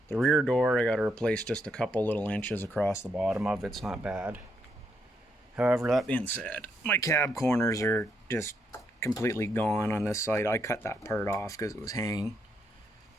The rear door, I got to replace just a couple little inches across the bottom of it. It's not bad. However, that being said, my cab corners are just completely gone on this side. I cut that part off because it was hanging.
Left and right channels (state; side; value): normal; both; correlation 0.77